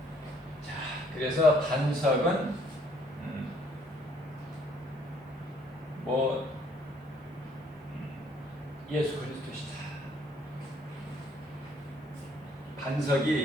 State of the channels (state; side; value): normal; both; correlation 0.64